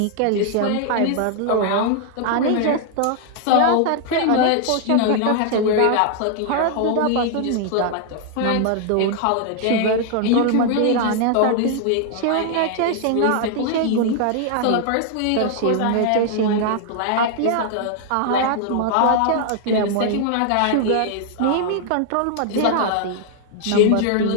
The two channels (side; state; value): both; different; correlation 0.00